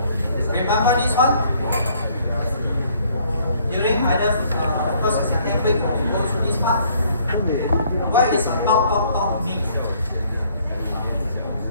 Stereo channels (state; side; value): inverted; both; correlation -0.63